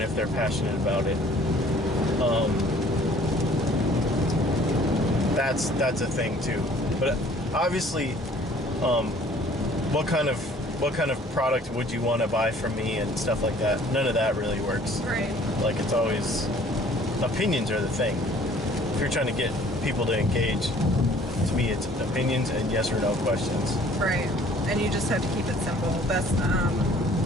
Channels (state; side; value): normal; both; correlation 0.55